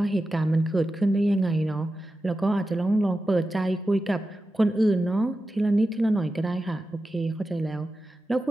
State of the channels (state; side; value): normal; both; correlation 0.92